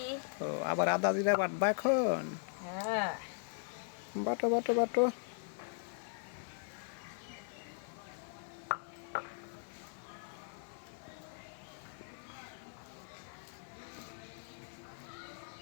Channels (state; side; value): silent; right; 52 dB below the other